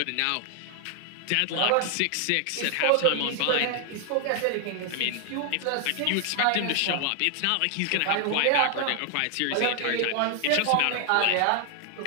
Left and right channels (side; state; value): both; different; correlation 0.00